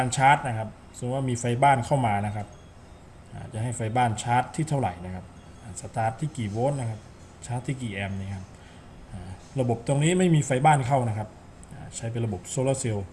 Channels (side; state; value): both; identical; correlation 1.00